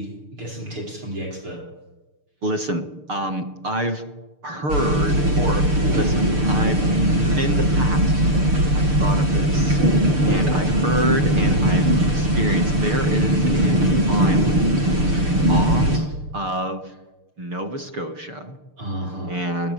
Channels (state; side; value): late; left; 6.7 ms